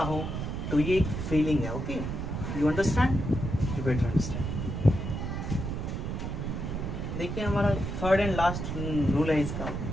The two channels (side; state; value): right; noise; rumble, 4 dB below the sound